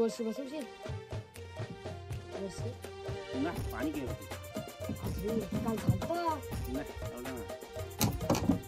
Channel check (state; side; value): identical; both; correlation 1.00